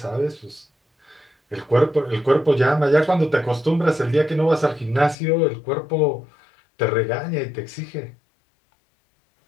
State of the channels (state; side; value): drops out; right; at 5.2 s